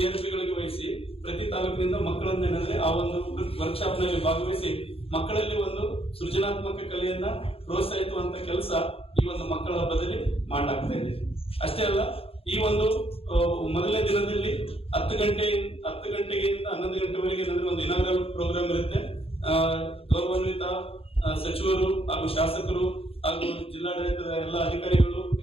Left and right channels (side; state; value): right; late; 0.27 ms